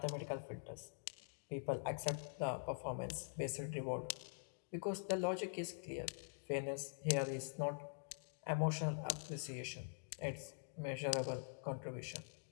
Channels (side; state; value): right; silent; digital silence